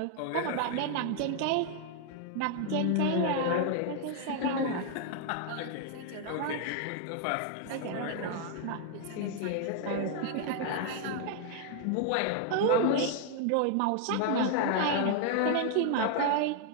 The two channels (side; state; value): both; different; correlation 0.00